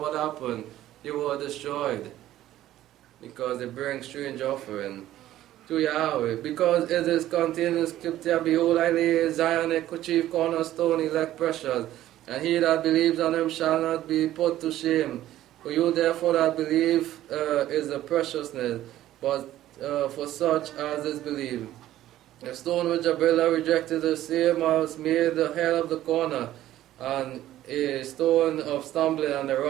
happened? They were destroyed. Because they bring strange offering to Yahweh. Because it is contained in Scripture, behold, I lay Zion a chief cornerstone, elect precious. And he that believes on him shall not be put to shame. For you therefore that believe is the preciousness, but for such as is believed. The stone which GABRIEL rejected, the same was made the head of the corner, and a stone of stumbling and a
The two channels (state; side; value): quieter; left; 13.7 dB